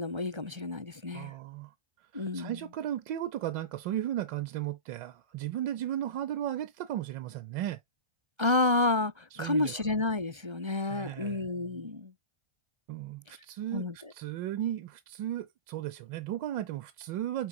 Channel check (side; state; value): left; late; 1.3 ms